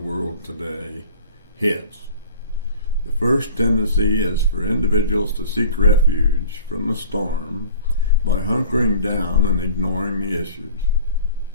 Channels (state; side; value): inverted; both; correlation -0.44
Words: today hits, the first tendency is for individuals to seek refuge from the storm by hunkering down and ignoring the issues.